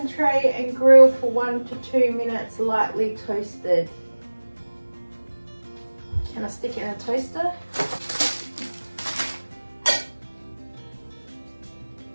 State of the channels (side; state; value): both; inverted; correlation -1.00